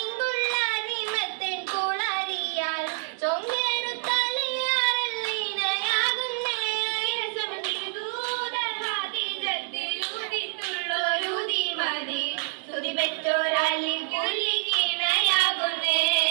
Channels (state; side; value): silent; left; 60 dB below the other